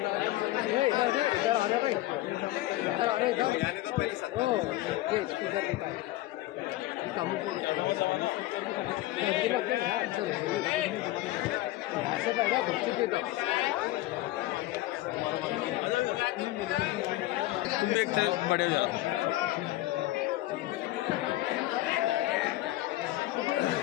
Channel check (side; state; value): right; quieter; 16.9 dB